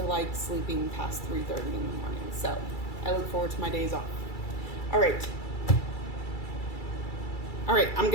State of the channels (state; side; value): late; right; 2.3 ms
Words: like sleeping past 3:30 in the morning. So I look forward to my days off. All right, I'm